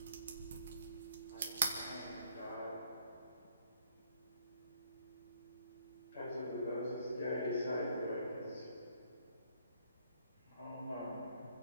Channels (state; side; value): inverted; both; correlation -0.66